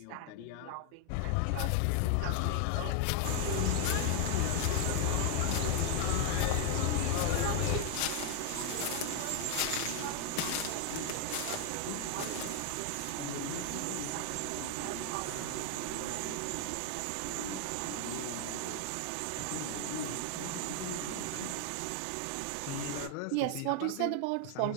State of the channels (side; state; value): both; different; correlation 0.00